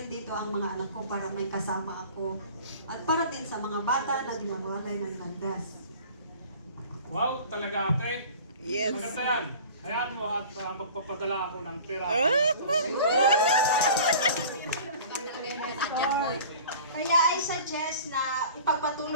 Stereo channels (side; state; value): both; inverted; correlation -0.42